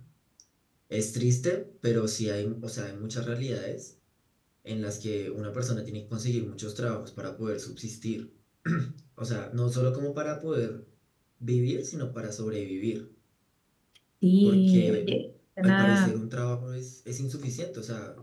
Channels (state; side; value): identical; both; correlation 1.00